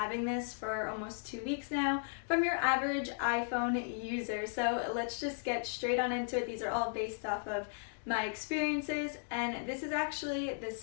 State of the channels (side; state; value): right; silent; digital silence